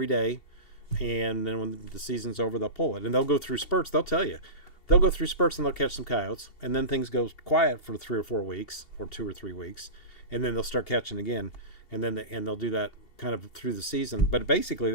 day. And then when the season's over, they'll pull it. And they'll go through spurts. They'll tell you. They'll go through spurts and they'll catch some coyotes. And then things go quiet for 3 or 4 weeks, or 2 or 3 weeks. And then they'll start catching again. And then they'll do that kind of through the season. But basically,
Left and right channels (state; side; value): late; right; 2.7 ms